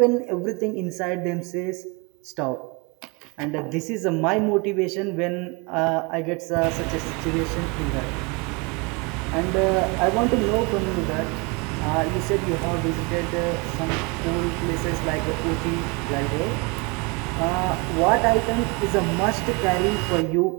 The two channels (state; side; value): quieter; left; 29.1 dB